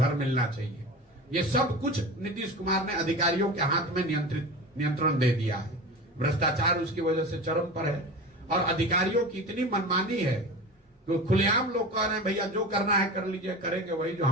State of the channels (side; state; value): both; normal; correlation 0.31